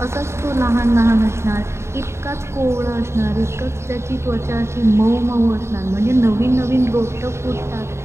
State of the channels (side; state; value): left; late; 0.13 ms